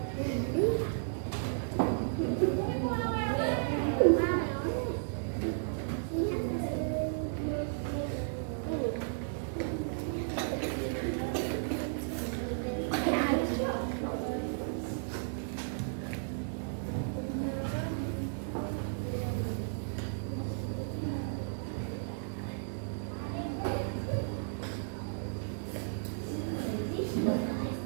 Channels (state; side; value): silent; left; digital silence